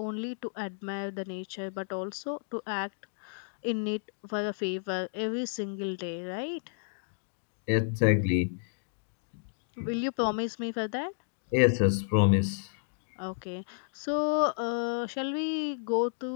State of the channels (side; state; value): right; silent; digital silence